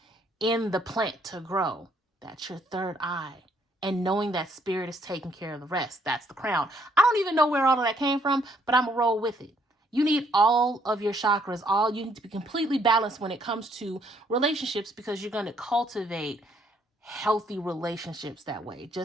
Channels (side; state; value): both; normal; correlation 0.68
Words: in the plant to grow. That's your third eye. And knowing that spirit is taking care of the rest. That's the crown. I don't even know where all of that came from, but I'm gonna roll with it. You need all of your chakras. You need to be completely balanced when it comes to relationships, because you're going to cultivate healthy relationships that way.